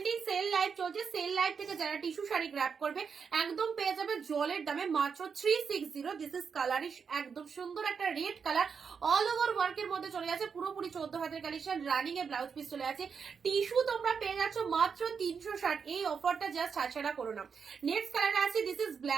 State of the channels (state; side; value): quieter; left; 6.1 dB